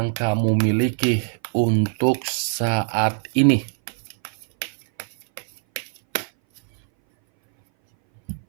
kamu miliki untuk saat ini.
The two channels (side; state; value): left; silent; 60 dB below the other